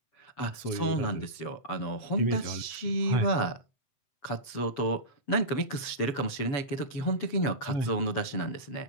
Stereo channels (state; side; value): late; right; 7.7 ms